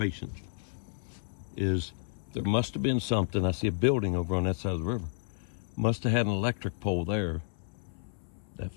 is there must have been something. I see a building over on that side of the river. Must have had an electric pole there that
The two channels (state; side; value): silent; right; 57 dB below the other